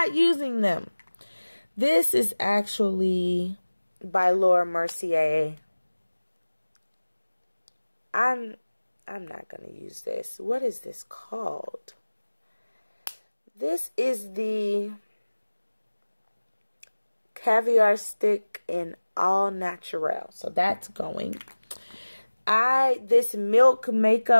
using them. This is actually by Laura Mercier. I'm not going to use this. What is this called? This is the Caviar Stick in All Natural. So that's going. This Milk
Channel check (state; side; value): inverted; both; correlation -1.00